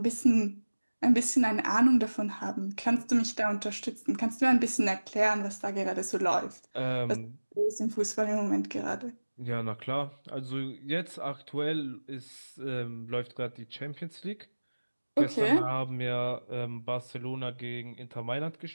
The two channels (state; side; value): inverted; both; correlation -1.00